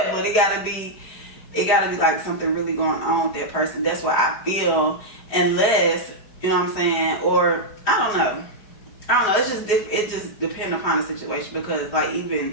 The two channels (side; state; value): right; late; 4.8 ms